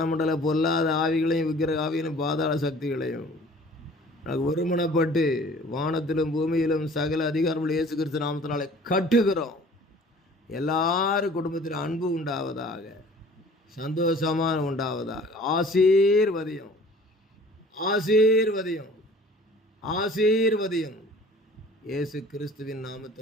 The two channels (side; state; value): both; normal; correlation 0.49